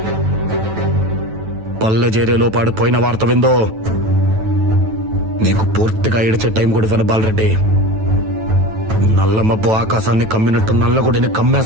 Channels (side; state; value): left; late; 9.2 ms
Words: పల్లె చేరేలోపు ఆడిపోయిన వార్త విందో నీకు పూర్తిగా ఏడిచే టైం కూడా ఇవ్వను బాలరెడ్డి. నల్ల మబ్బు ఆకాశాన్ని కమ్మినట్టు నల్లగుడిని